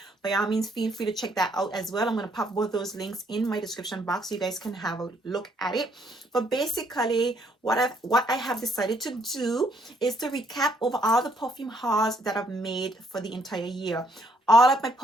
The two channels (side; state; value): both; normal; correlation 0.68